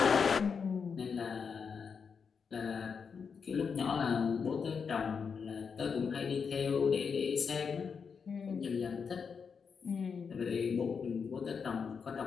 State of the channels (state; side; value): quieter; right; 6.0 dB